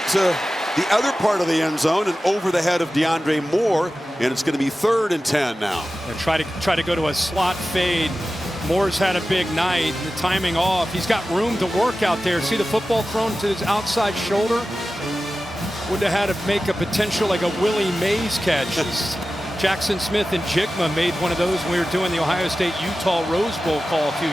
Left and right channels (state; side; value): normal; both; correlation 0.94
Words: to the other part of the end zone and over the head of DeAndre Moore, and it's going to be 3rd and 10 now. And try to go to a slot fade. Moore's had a big night. The timing off. He's got room to work out there. See the football thrown to his outside shoulder? Would have had to make a potential like a Willie Mays catch. Jackson Smith and Jigma made one of those when we were doing the Ohio State-Utah Rose Bowl call a few